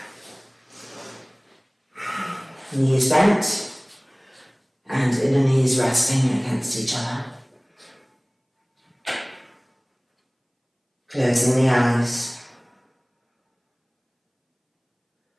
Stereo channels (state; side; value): identical; both; correlation 1.00